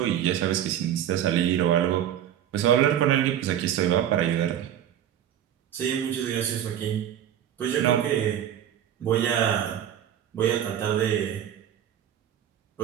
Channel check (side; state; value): left; quieter; 10.4 dB